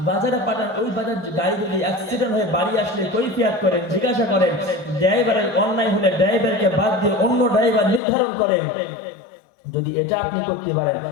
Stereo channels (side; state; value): right; drops out; at 8.0 s